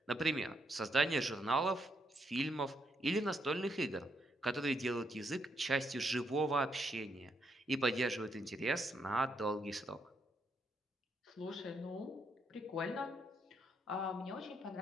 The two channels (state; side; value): normal; both; correlation 0.76